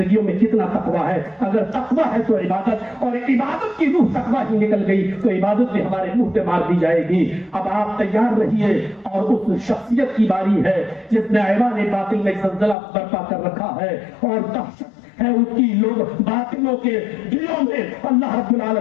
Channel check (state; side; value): drops out; right; at 12.8 s